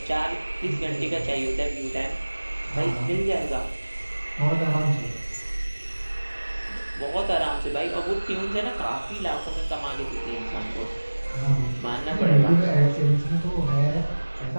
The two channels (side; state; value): both; inverted; correlation -1.00